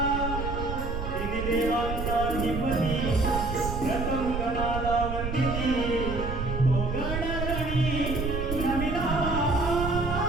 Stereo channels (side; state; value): right; noise; rumble, 4 dB below the sound